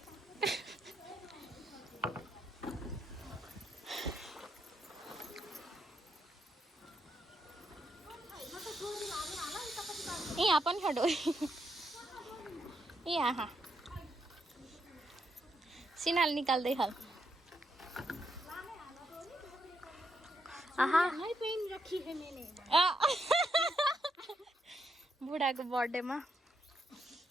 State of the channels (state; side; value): normal; both; correlation 0.79